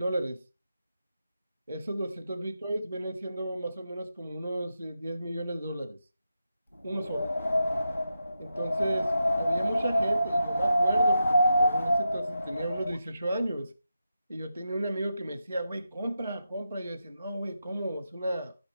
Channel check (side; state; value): both; inverted; correlation -0.87